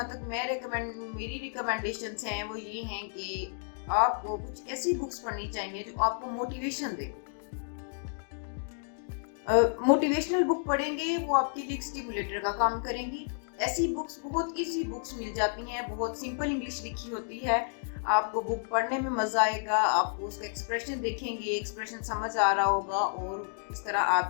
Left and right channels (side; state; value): right; silent; digital silence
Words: तक मेरी रिकमेंडेशंस हैं वो ये हैं कि आपको कुछ ऐसी बुक्स पढ़नी चाहिए जो आपको मोटिवेशन दे। मोटिवेशनल बुक पढ़ेंगे वो आपके लिए स्टिमुलेटर का काम करेंगी। ऐसी बुक्स, बहुत इजी बुक्स मिल जाती हैं, बहुत सिंपल इंग्लिश लिखी होती है, आपको बुक पढ़ने में मजा आएगा, आपको उसका एक्सप्रेशन देखेंगे, एक्सप्रेशन समझ आ रहा होगा और इस तरह